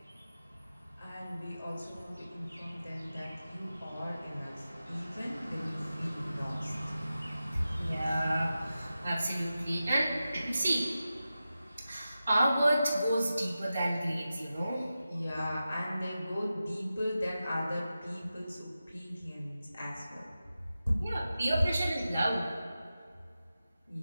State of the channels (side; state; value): both; inverted; correlation -0.93